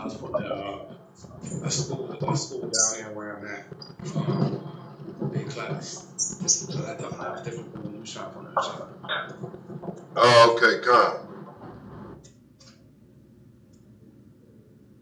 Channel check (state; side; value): identical; both; correlation 1.00